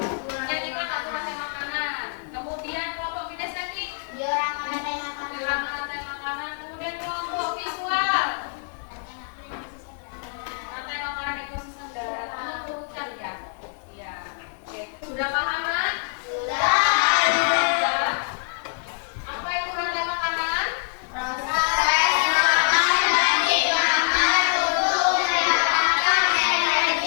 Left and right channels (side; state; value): right; silent; 59 dB below the other